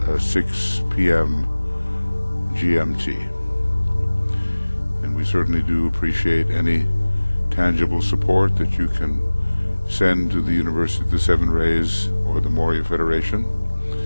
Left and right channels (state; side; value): inverted; both; correlation -1.00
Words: 6 p.m. GMT. And we certainly do appreciate any tangible support that you can send to the University of the Seven Rays or the Moria Federation,